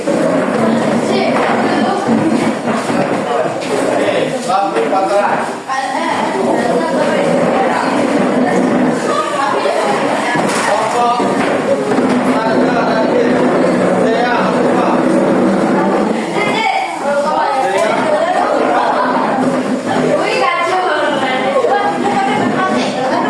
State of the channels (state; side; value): identical; both; correlation 1.00